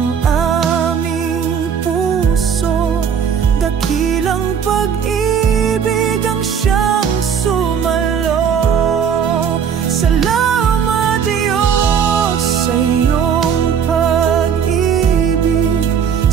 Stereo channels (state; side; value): quieter; left; 7.5 dB